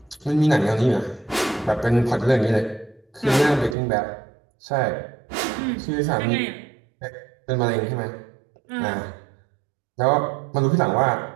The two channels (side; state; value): left; drops out; at 3.8 s